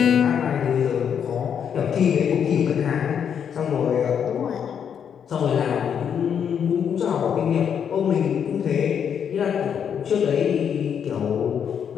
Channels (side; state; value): right; quieter; 8.0 dB